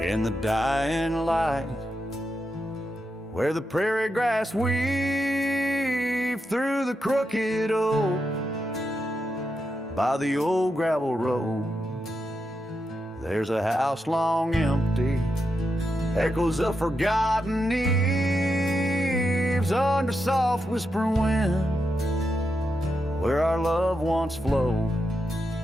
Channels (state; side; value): normal; both; correlation 0.85